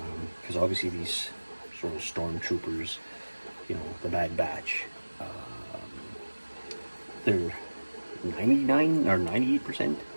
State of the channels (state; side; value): inverted; both; correlation -1.00